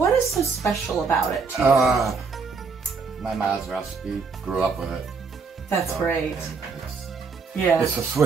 is so special about it to you? My mom's recipe, grew up with it. That's great. Yeah. It's a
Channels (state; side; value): quieter; left; 4.9 dB